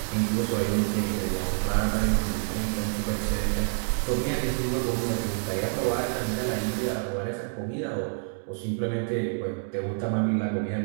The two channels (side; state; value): left; silent; digital silence